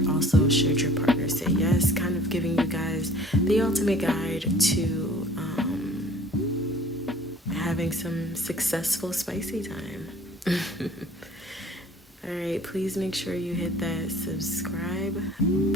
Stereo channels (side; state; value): both; normal; correlation 0.50